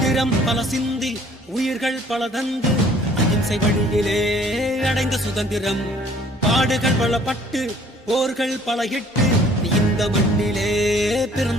பல சிந்தி உயிர்கள் பல தந்து அகிம்சை வழியிலே அடைந்த சுதந்திரம், பாடுகள் பல பட்டு போர்கள் பல இட்டு இந்த மண்ணிலே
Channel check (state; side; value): normal; both; correlation 0.56